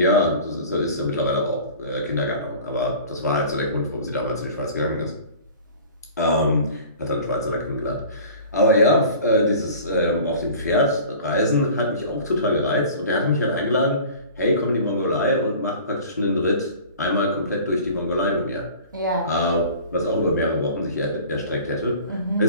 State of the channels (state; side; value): inverted; both; correlation -0.43